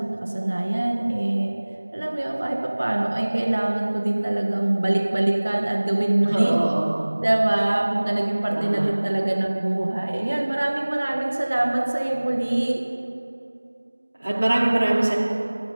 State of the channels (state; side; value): inverted; both; correlation -1.00